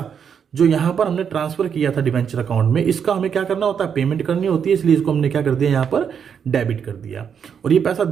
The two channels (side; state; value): left; quieter; 7.4 dB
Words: जो यहां पर हमने ट्रांसफर किया था डिबेंचर अकाउंट में, इसका हमें क्या करना होता है? पेमेंट करनी होती है। इसलिए इसको हमने क्या कर दिया? यहां पर डेबिट कर दिया। और ये पैसा